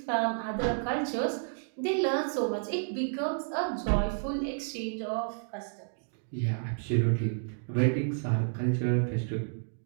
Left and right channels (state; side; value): silent; left; digital silence